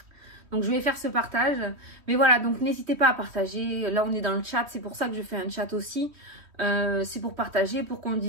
Donc, je vais faire ce partage. Mais voilà, donc n'hésitez pas à partager. Là, on est dans le chat. C'est pour ça que je fais un chat aussi. C'est pour partager, pour qu'on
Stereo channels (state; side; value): late; left; 3.1 ms